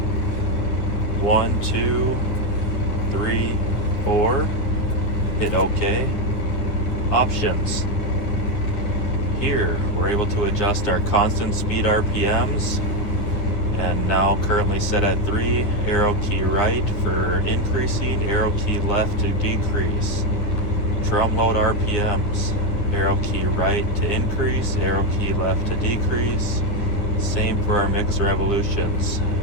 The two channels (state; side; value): late; right; 10 ms